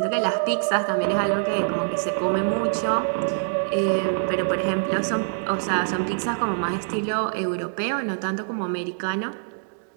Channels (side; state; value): left; silent; 62 dB below the other